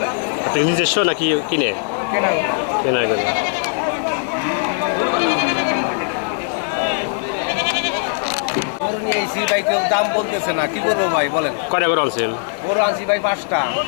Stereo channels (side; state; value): right; silent; 66 dB below the other